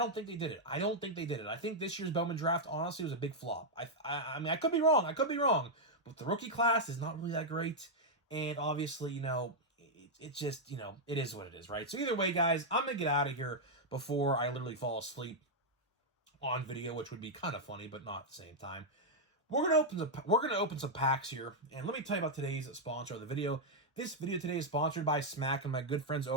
think they did it. I think this year's Bowman draft, honestly, was a big flop. I mean, I could be wrong. But the rookie class is not really that great. And obviously, it's just, it is what it is, right? So either way, guys, I'm going to get out of here before I literally fall asleep on video, which would be kind of funny, but not at the same time. We're gonna open some packs here, and let me tell you about today's sponsor of the video. This video today is sponsored by Smack and my good friends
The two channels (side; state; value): both; normal; correlation -0.03